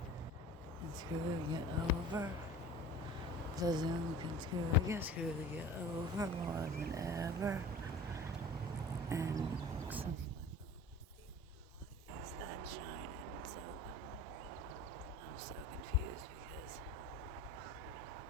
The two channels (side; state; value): both; normal; correlation 0.41